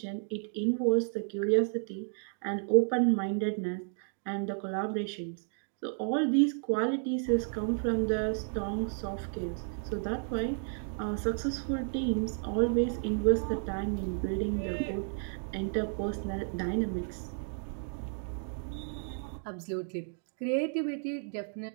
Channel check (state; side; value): silent; left; digital silence